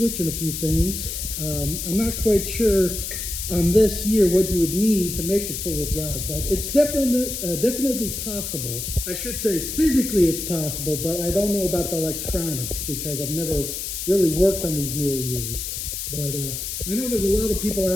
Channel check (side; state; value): left; noise; hiss, 5 dB below the sound